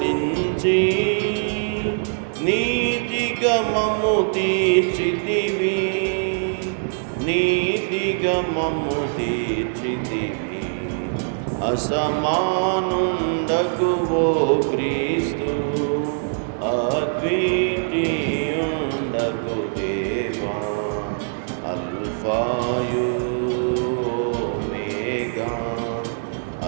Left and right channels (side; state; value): left; silent; digital silence